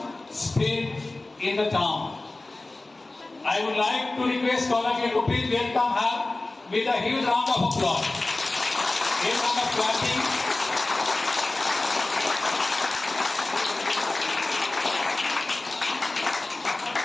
spread in the town. I would like to request all of you to please welcome her with a huge round of applause. A round of clapping.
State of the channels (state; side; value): quieter; right; 3.0 dB